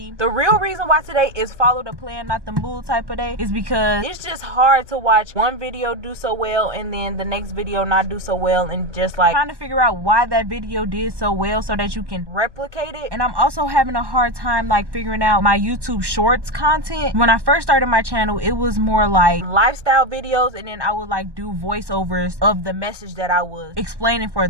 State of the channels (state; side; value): late; left; 1.1 ms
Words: The real reason why today is follow the plan, not the mood type of day is because it's just hard to watch one video do so well and then the next video not do so well, and just like trying to figure out why that video did so well so that you can replicate it. And I'm also having a hard time like figuring out my YouTube shorts content. When I first started my channel, it was more like lifestyle videos, and then I would like do voiceovers of the message that I was explaining for